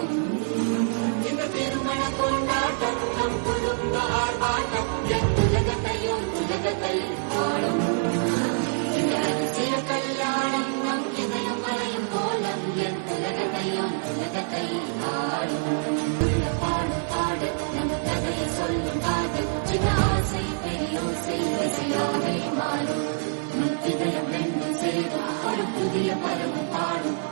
இந்த திருமண கொண்டாட்டம் நம் குடும்ப ஆர்ப்பாட்டம் என் உலகத்தை பாடும். இந்த அதிசய கல்யாணம் நம் இதயம் வரையும் கோலம் என் உலகத்தை பாடும். பாடும் பாட நம் கதையை சொல்லும் காதல் சின்ன ஆசை பெரியோசை இசையாவே மாறும். இதயம் ரெண்டும் சேரும் ஒரு புதிய பருவம் பாடும்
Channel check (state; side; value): silent; left; digital silence